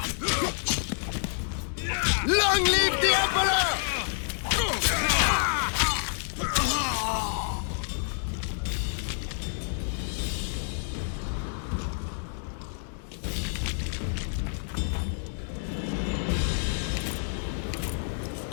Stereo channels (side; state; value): right; silent; digital silence